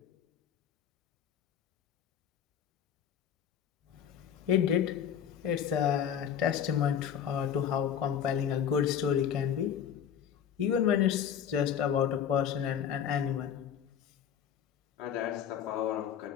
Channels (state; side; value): quieter; right; 8.8 dB